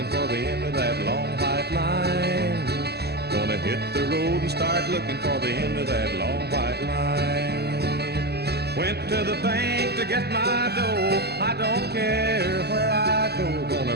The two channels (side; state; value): left; late; 0.47 ms